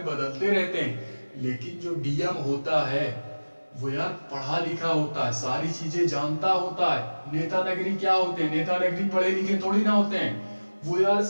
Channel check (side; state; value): both; inverted; correlation -1.00